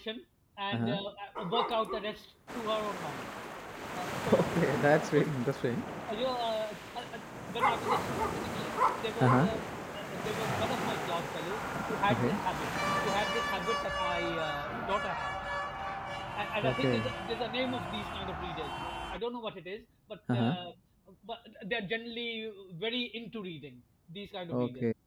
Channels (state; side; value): identical; both; correlation 1.00